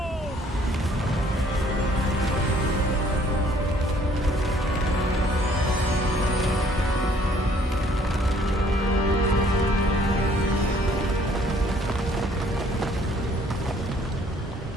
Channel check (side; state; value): both; normal; correlation 0.60